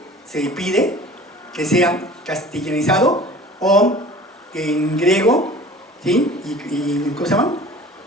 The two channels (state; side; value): normal; both; correlation 0.43